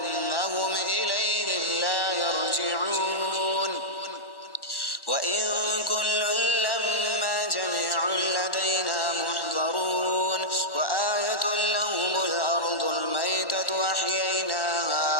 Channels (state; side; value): late; right; 1.1 ms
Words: إليهم لا يرجعون وإن كل لما جميع لدينا محضرون وآية لهم الأرض الميتة